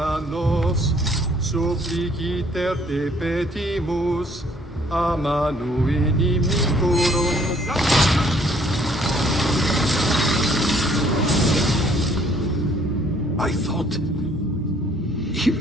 Dios, suppliciter te petimus, a manu inimicorum. I thought he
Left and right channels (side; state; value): both; normal; correlation 0.61